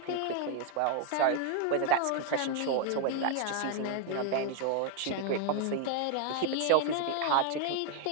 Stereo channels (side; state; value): both; different; correlation 0.00